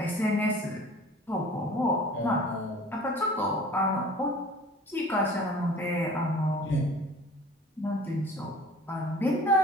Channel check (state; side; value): normal; both; correlation 0.45